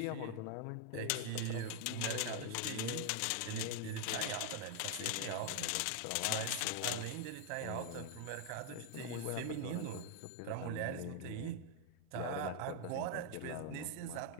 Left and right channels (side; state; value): both; different; correlation 0.00